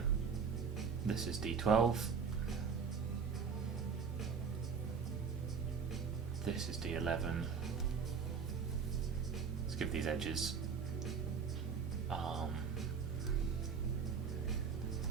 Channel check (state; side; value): quieter; left; 6.2 dB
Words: this is D12, this is D11. Let's give these edges